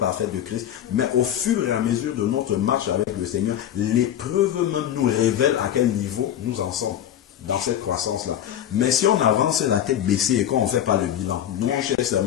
de Christ. Mais au fur et à mesure de notre marche avec le Seigneur, l'épreuve même nous révèle à quel niveau nous en sommes dans cette croissance-là. Mais si on avance la tête baissée et qu'on ne fait pas le bilan, nous on cherche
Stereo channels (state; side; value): quieter; right; 10.6 dB